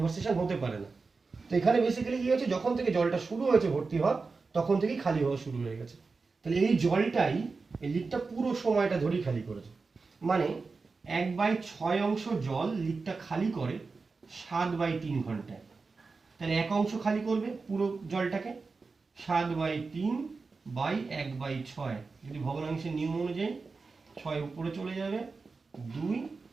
হতে পারে না। তো এখানে বেসিক্যালি কি হয়েছে, যখন থেকে জলটা শুরু হয়েছে ভর্তি হওয়া, তখন থেকেই খালি হওয়া শুরু হয়ে গেছে। তাহলে এই জলটাই এই লিকটা পুরো সময়টা ধরেই খালি করেছে। মানে 1/6 অংশ জল লিকটা খালি করে 7/3 ঘন্টায়। তাহলে 1 অংশ খালি করবে পুরো জলটাকে, 7/3/1/6। যদি ভগ্নাংশের নিয়ম অনুযায়ী 6 উপরে চলে যাবে, 2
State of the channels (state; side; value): quieter; left; 4.3 dB